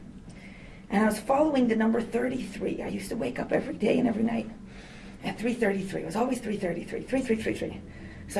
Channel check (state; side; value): identical; both; correlation 1.00